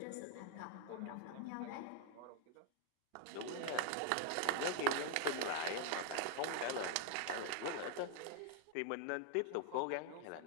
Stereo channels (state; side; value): different; both; correlation 0.00